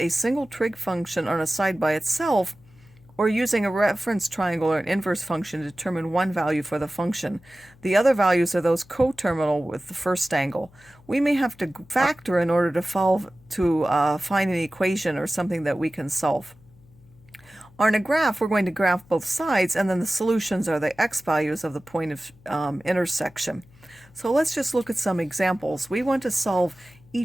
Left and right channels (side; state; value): left; noise; hum, 27 dB below the sound